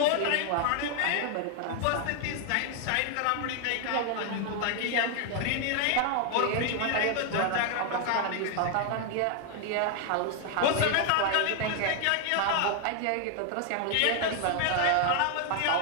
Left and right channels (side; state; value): both; different; correlation 0.00